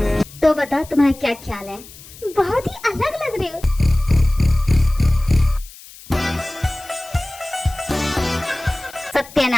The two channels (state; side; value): noise; left; hiss, 19 dB below the sound